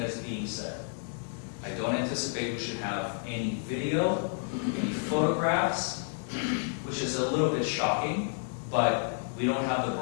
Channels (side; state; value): right; silent; 57 dB below the other